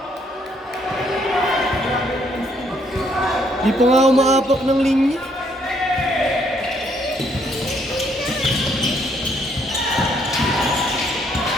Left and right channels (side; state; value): both; normal; correlation 0.69